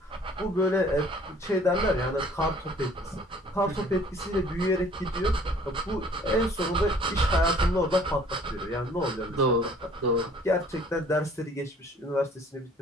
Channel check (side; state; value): both; normal; correlation 0.54